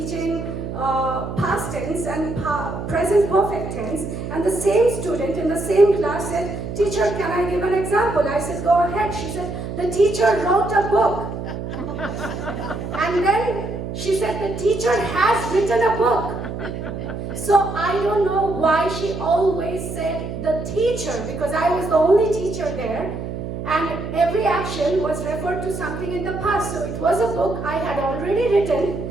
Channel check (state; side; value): noise; right; hum, 6 dB below the sound